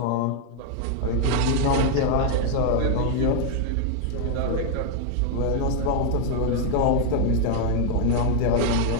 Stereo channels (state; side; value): different; both; correlation 0.00